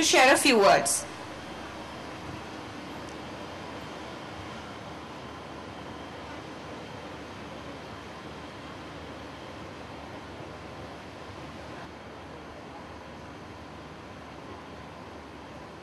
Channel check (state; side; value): identical; both; correlation 1.00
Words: share a few words.